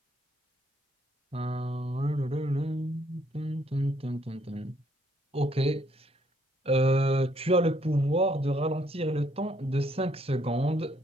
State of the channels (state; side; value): normal; both; correlation 0.69